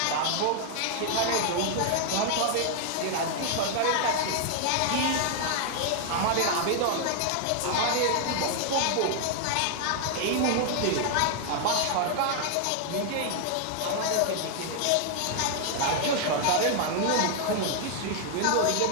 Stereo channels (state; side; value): different; both; correlation 0.00